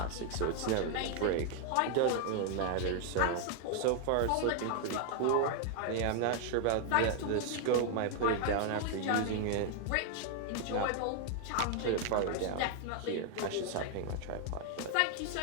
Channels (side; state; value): both; different; correlation 0.00